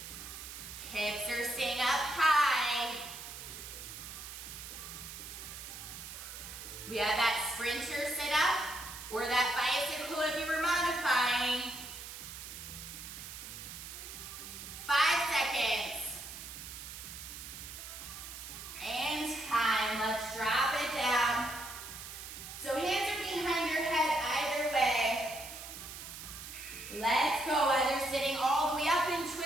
Hips are staying up high. We have that sprinter sit up or that bicycle if you were modifying. 5 seconds. And time. Let's drop it down. So hands are behind your head either way. Let's go. Either sitting all the way up and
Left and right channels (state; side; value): noise; right; hiss, 11 dB below the sound